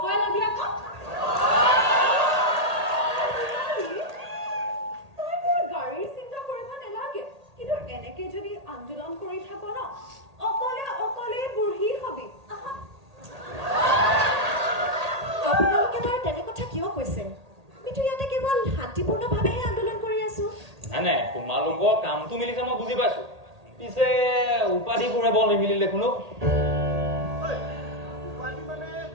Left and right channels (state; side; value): late; left; 1.8 ms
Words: পাই ল'বি আকৌ তই মোৰ গাড়ীৰ চিন্তা কৰিব নালাগে কিন্তু এনেকে যদি আন্দোলন কৰি থাক ন অকলে বুঢ়ী হবি আপোনালোকে বাৰু তেনে কথা কিয় কৈছে আমিতো ইয়াতে কেৱল শান্তিপূৰ্ণভাৱেহে আন্দোলন কৰি আছো নাই তোমালোকৰ কামটো মিলিছে মই বুজি পাইছো পিছে উপাধিবোৰে বৰ নিমিলিলে দেখোনো